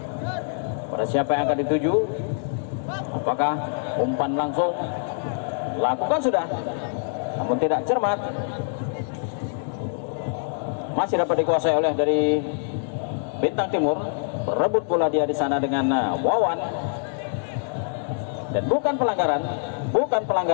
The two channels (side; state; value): right; silent; digital silence